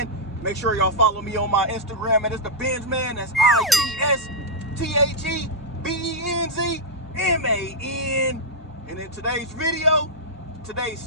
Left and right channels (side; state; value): both; normal; correlation -0.06